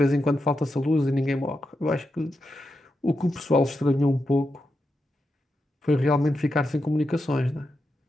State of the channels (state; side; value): normal; both; correlation 0.87